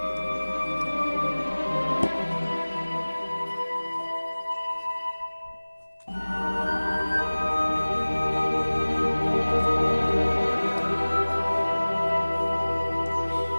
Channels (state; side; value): inverted; both; correlation -1.00